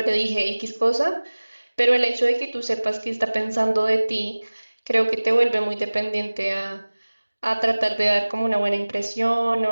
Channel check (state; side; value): inverted; both; correlation -1.00